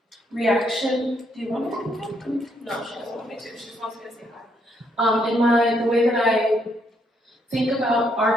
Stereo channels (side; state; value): both; normal; correlation 0.73